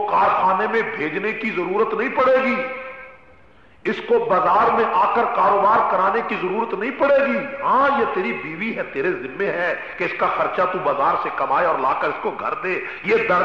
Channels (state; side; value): identical; both; correlation 1.00